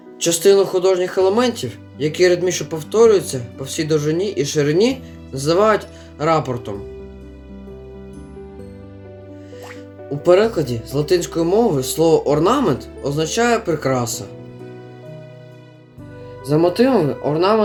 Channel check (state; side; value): identical; both; correlation 1.00